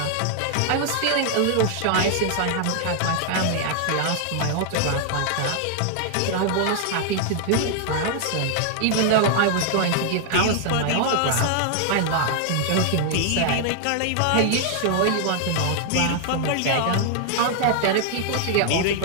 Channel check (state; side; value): different; both; correlation 0.00